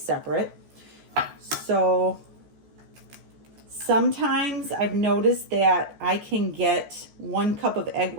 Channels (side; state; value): left; late; 14 ms